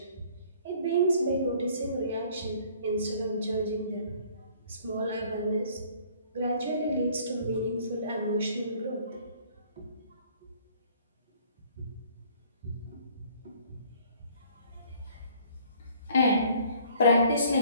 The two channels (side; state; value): both; inverted; correlation -0.56